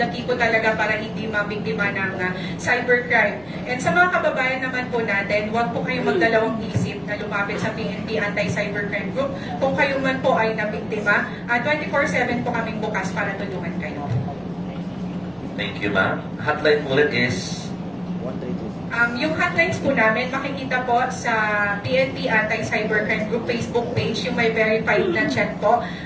key po talaga para hindi mabiktima ng cybercrime. And sa mga kababayan naman po natin, huwag po kayong magdalawang isip na lumapit sa PNP Anti-Cybercrime Group. Kung kayo man po ay nabiktima, 24/7 po kaming bukas para tulungan kayo. Thank you, ma'am. Hotline po ulit is... Yung hotlines po namin, makikita po sa PNP Anti-Cybercrime Group Facebook page, yung may verified na chat po.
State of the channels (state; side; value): noise; left; rumble, 26 dB below the sound